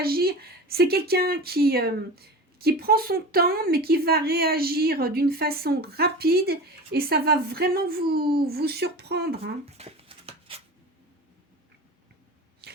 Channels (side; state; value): both; normal; correlation 0.32